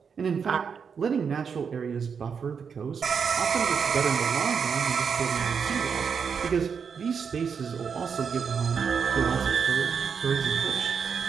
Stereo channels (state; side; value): quieter; left; 6.4 dB